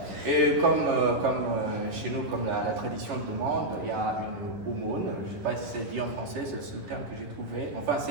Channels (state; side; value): late; left; 10 ms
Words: Et comme chez nous, comme la tradition le demande, il y a une aumône. Je ne sais pas si c'est dit en français, c'est le terme que j'ai trouvé. Enfin,